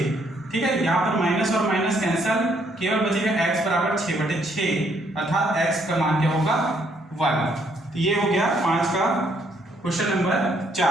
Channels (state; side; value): normal; both; correlation 0.69